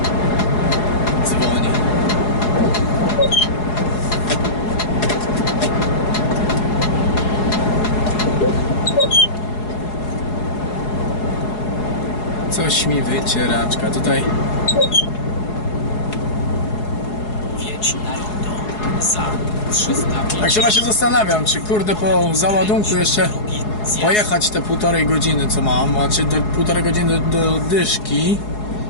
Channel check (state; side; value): late; right; 4.8 ms